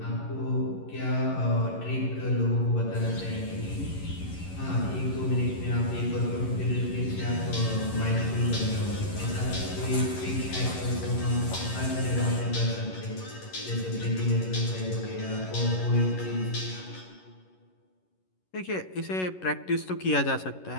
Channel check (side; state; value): right; late; 11 ms